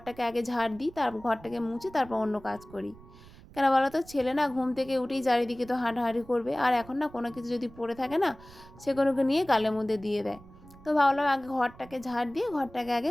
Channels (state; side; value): noise; right; rumble, 21 dB below the sound